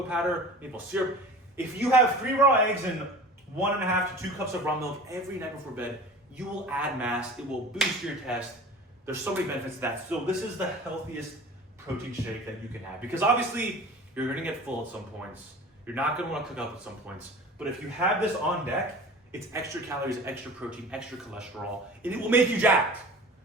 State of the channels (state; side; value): normal; both; correlation 0.40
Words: powder, maple syrup. If you have 3 raw eggs and 1.5 to 2 cups of raw milk every night before bed, you will add mass. It will boost your test. There's so many benefits to that. So this is the healthiest protein shake that you can have, because obviously you're gonna get full at some points. You're not gonna wanna cook up at some points. But if you have this on deck, it's extra calories, extra protein, extra cholesterol, and it will make you jacked.